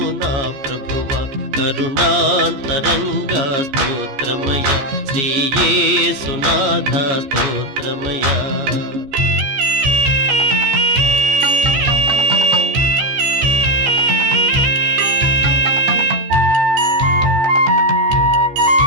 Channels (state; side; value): late; left; 14 ms